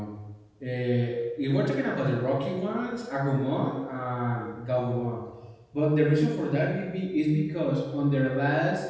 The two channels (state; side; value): identical; both; correlation 1.00